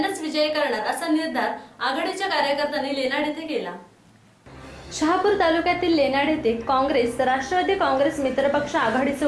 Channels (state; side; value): identical; both; correlation 1.00